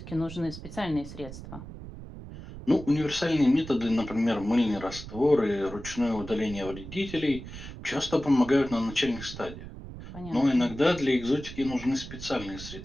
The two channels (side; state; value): right; noise; rumble, 12 dB below the sound